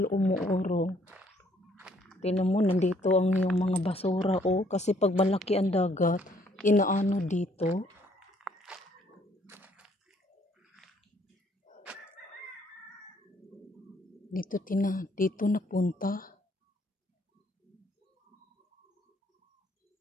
umuurong. Tingnan mo, nandito ang yung mga basura oh. Kasi pag malaki ang dagat, inaano dito. Dito napunta.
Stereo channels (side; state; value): both; normal; correlation 0.65